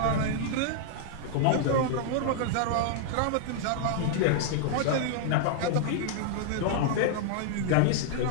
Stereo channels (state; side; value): different; both; correlation -0.01